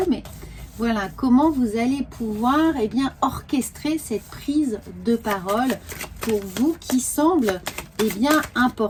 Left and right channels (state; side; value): identical; both; correlation 1.00